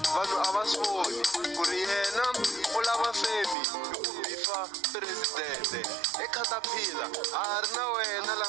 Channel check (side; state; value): left; drops out; at 3.6 s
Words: vanhu a va swi voni ku ri yena u lava femi hi ku bifa presidente ekhatapila a ri na wena la